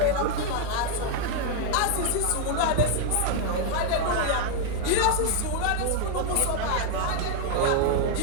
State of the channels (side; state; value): both; different; correlation 0.00